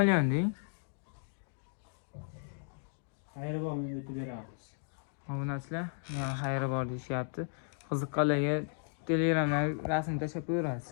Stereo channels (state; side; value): silent; right; digital silence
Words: deng. Xayri bormi o'tib beramiz. Obunachilar, xayri bor deyishyapti. Qiziqqanlarga Telegramdan rasm tashlab qo'yarasiz.